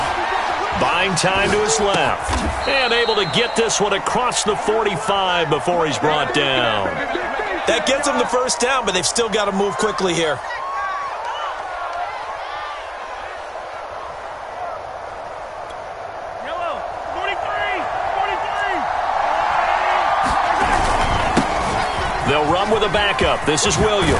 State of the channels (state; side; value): identical; both; correlation 1.00